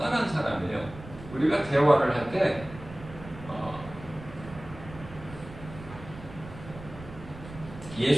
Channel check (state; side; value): noise; right; rumble, 15 dB below the sound